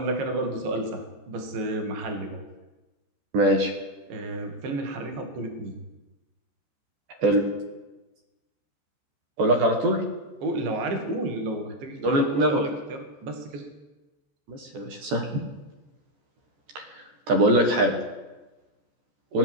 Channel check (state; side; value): late; left; 14 ms